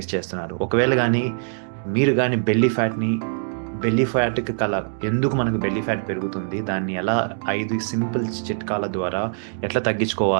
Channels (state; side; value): silent; left; digital silence